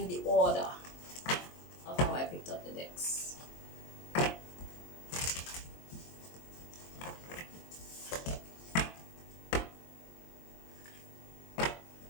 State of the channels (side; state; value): right; late; 23 ms